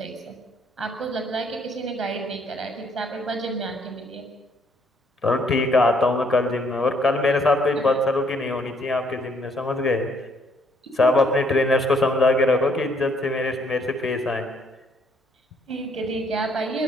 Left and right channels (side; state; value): both; normal; correlation 0.67